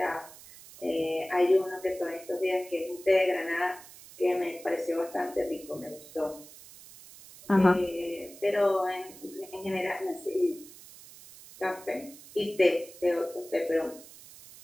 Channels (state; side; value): noise; right; hiss, 19 dB below the sound